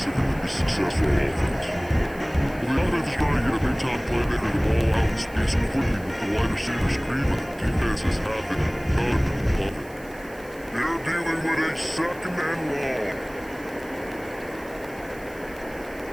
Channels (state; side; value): noise; right; hiss, 23 dB below the sound